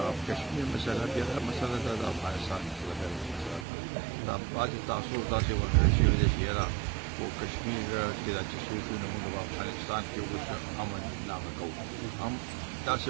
کشمیر مسله بیا مسله ده د افغانستان مسله ده دا بعضې تاثر داسې ورکړی شوی دی چې یاره په کشمیر کې دا چې څوک وي نو موږ په افغانستان کې اوس امن نامه کوو هم داسې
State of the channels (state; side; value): drops out; left; at 3.7 s